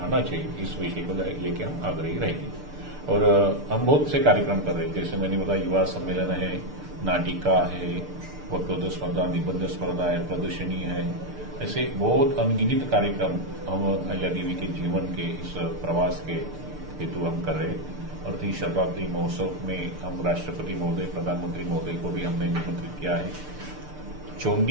चाहिए, इस विषय को लेकर हम आग्रही रहेंगे। और हम बहुत से कार्यक्रम कर रहे हैं, जैसे मैंने बताया युवा सम्मेलन है, नाटिका है, वक्तृत्व स्पर्धा, निबंध स्पर्धा है, प्रदर्शनी है, ऐसे बहुत अनगिनत कार्यक्रम हम अहिल्या देवी के जीवन के इस प्रवास के हेतु हम कर रहे हैं। और 30 शताब्दी महोत्सव में हम राष्ट्रपति महोदय, प्रधानमंत्री महोदय को भी हमने निमंत्रित किया है।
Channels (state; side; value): late; left; 6.7 ms